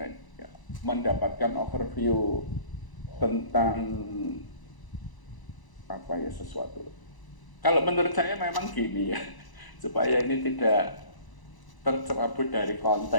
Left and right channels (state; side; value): late; right; 1.0 ms